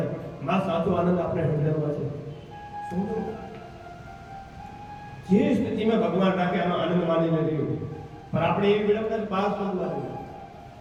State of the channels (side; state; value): both; identical; correlation 1.00